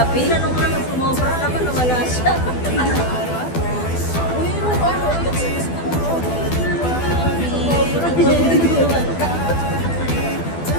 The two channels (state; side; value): late; right; 12 ms